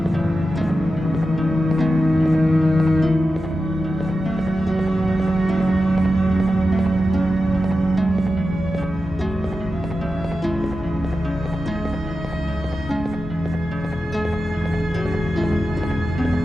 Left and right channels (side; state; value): both; normal; correlation 0.91